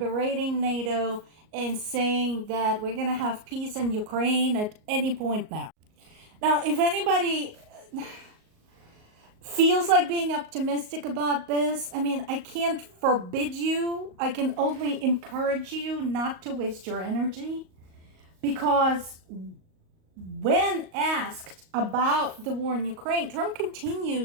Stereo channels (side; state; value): left; late; 38 ms